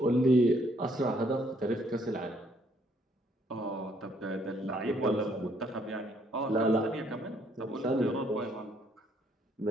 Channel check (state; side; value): normal; both; correlation 0.67